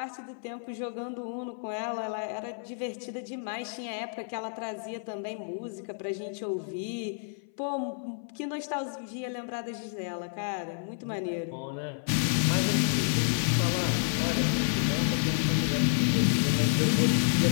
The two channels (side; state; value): right; silent; 58 dB below the other